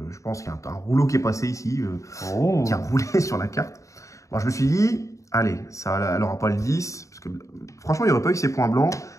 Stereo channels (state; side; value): late; right; 0.15 ms